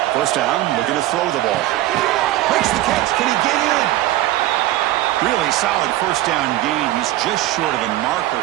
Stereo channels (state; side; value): quieter; left; 15.4 dB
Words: First down, looking to throw the ball. Makes the catch. Can he get in? Really solid first down gain. He's just short of the marker,